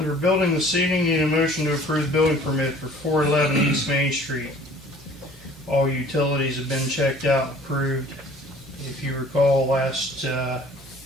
building this evening, need a motion to approve building permit for 411 East Main Street. All utilities have been checked out and approved. If you recall, last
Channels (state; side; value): normal; both; correlation 0.51